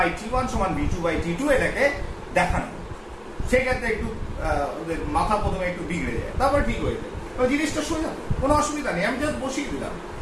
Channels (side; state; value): both; identical; correlation 1.00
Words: = v2/t2 এটাকে দেখানো। সেক্ষেত্রে একটু ওদের মাথা প্রথমে একটু বিগড়ে যায়, তারপর ঠিক হয়ে যায়। জিনিসটা সোজা, কোনো অসুবিধা নেই, আমি জাস্ট বসিয়ে দিলাম,